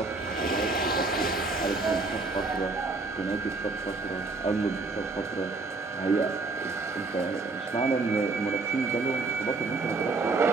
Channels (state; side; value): quieter; left; 3.6 dB